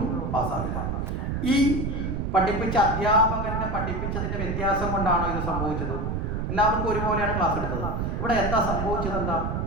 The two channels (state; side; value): noise; right; rumble, 2 dB below the sound